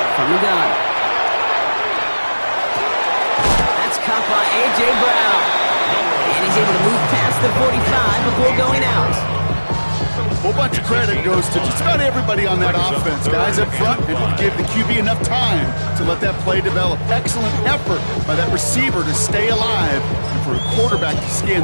from the gun. That's caught by A.J. Brown. And he's able to move past the 45 before going out. A whole bunch of credit goes to just about everybody on that offense. Guys up front, able to give the QB enough time to let that play develop. Excellent effort by that receiver to stay alive. And for a quarterback to scan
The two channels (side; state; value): both; inverted; correlation -1.00